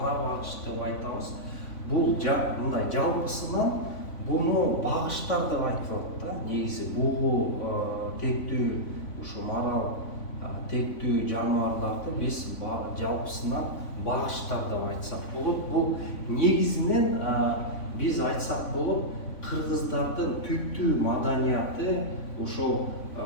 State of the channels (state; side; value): late; right; 3.5 ms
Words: багыш деп айтабыз. Бул мындай жалпысынан буну багыштар деп айтылат да. Негизи бугу тектүү, ушу марал тектүү жаныбарларды биз жалпысынан багыштар деп айтсак болот. Бул негизинен биз айтсак болот, кыргыздардын түптүү маданияты ошол